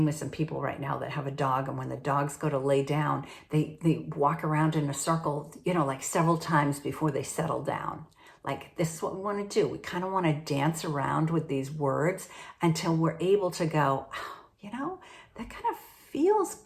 with some people right now that have a dog, and when the dogs go to lay down, they walk around in a circle, like several times before they settle down. Like, this is what we want to do. We kind of want to dance around with these words until we're able to go, that kind of feels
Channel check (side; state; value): both; identical; correlation 1.00